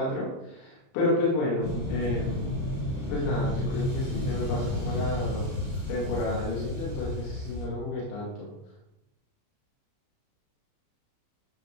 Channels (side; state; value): right; late; 31 ms